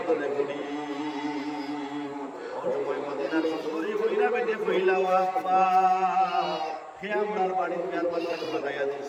তো বুড়ি ও সময় মদিনার সুন্দরী কইরা বেটে কইলা বাবা হে আমার বাড়ির বিয়ার বাচ্চাকে বানাইয়া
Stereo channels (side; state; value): both; identical; correlation 1.00